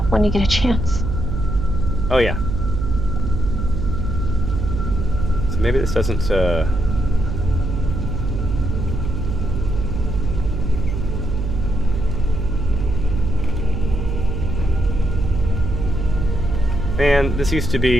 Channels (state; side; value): noise; right; hum, 2 dB below the sound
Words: when you get a chance? Oh, yeah. So maybe this doesn't, Man, this used to